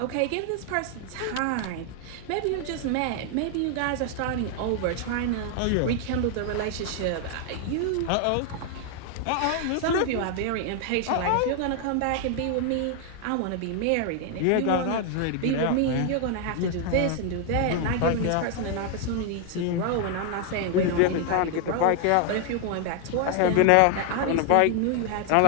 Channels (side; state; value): both; different; correlation 0.00